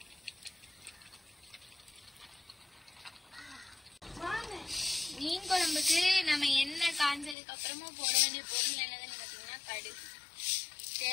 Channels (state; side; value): drops out; right; at 7.4 s